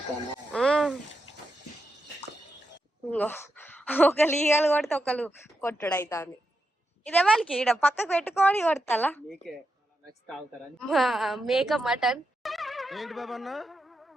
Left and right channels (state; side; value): normal; both; correlation 0.86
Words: ఒకళ్ళు ఈగలు కొడితే ఒకళ్ళు కొట్టుడు అవుతుంది. ఇదే వాళ్ళకి ఈడ పక్కకు పెట్టుకొని కొడతా మేక మటన్